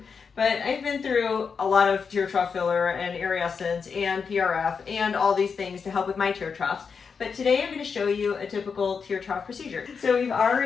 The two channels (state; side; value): quieter; right; 5.8 dB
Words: But I've been through a lot of tear trough filler and Essence and PRF and all these things to help with my tear troughs. But today I'm going to show you a typical tear trough procedure. So we've